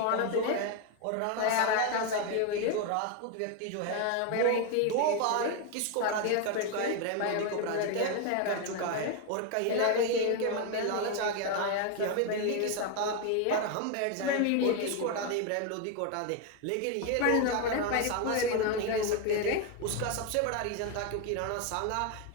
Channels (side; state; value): both; different; correlation 0.01